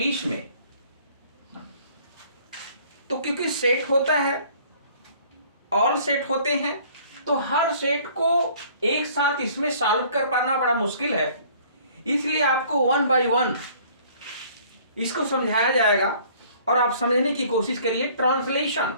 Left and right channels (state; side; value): inverted; both; correlation -0.55